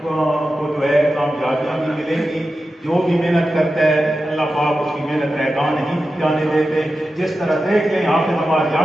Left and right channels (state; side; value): normal; both; correlation 0.92